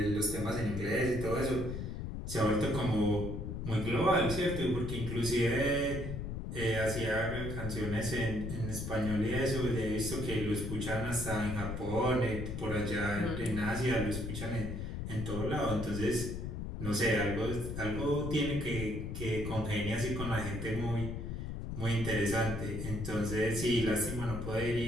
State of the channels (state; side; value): noise; left; rumble, 5 dB below the sound